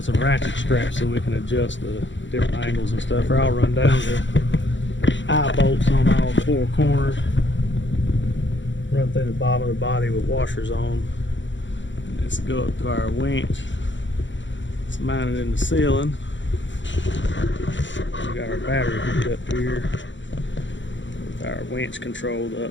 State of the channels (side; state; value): right; late; 0.54 ms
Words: some ratchet straps so we can adjust the different angles and stuff. Or I'll run down the eye bolts on all four corners. Run through the bottom of the body with washers on. And let's go up to our winch. It's mounted in the ceiling. We got our battery hooked up here with our winch controlled